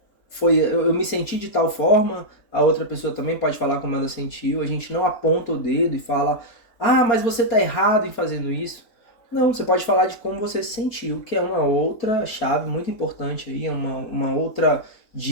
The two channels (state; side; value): late; right; 4.0 ms